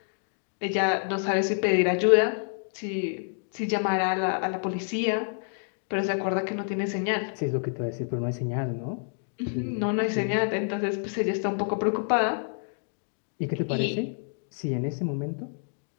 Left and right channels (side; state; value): right; silent; digital silence